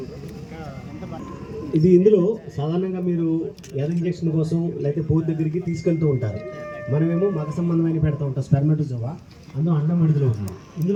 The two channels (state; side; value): identical; both; correlation 1.00